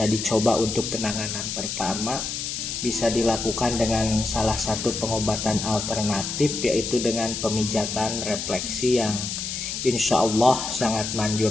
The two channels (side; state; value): left; noise; hiss, 4 dB below the sound